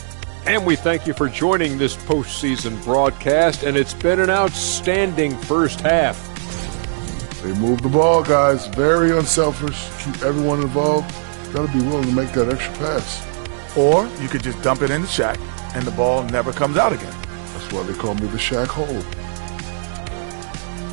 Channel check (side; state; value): left; silent; digital silence